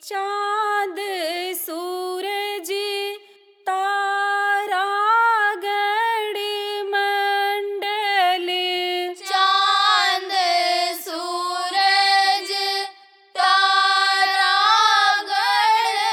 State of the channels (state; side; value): identical; both; correlation 1.00